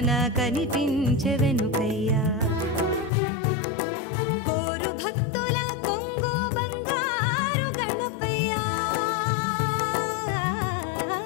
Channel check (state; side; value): drops out; right; at 3.1 s